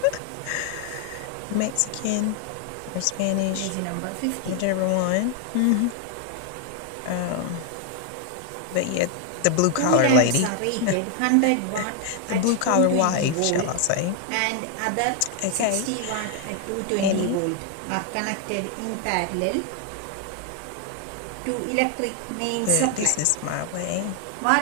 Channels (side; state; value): both; different; correlation 0.00